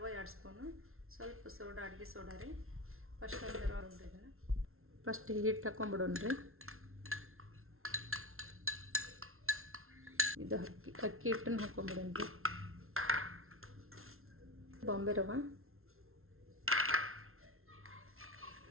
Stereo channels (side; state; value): left; late; 0.62 ms